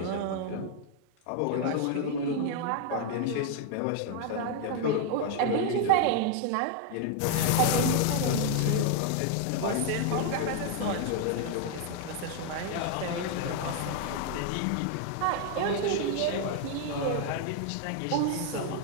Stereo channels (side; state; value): both; different; correlation 0.00